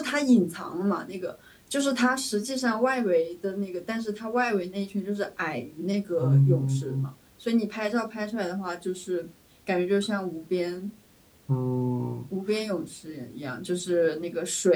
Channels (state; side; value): identical; both; correlation 1.00